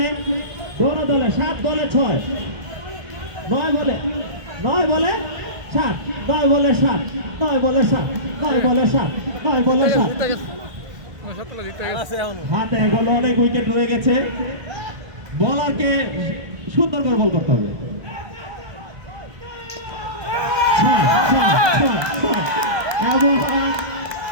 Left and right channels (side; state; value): left; late; 1.2 ms